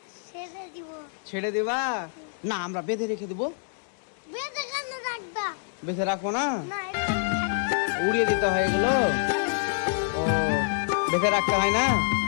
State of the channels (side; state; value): right; silent; digital silence